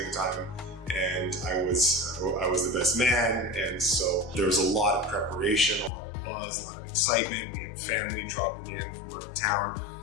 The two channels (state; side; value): drops out; right; at 5.9 s